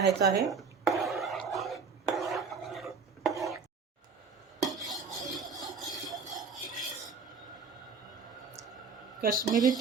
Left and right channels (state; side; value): quieter; left; 5.2 dB